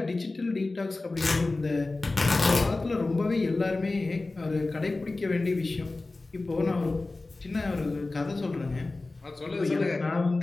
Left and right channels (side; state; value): right; quieter; 3.2 dB